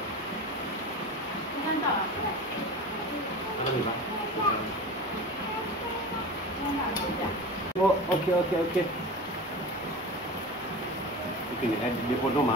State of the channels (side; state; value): both; normal; correlation 0.31